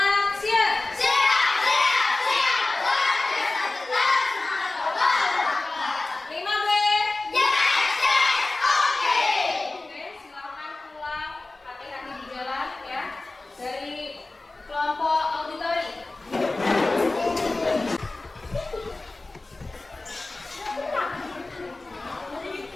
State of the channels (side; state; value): right; quieter; 3.1 dB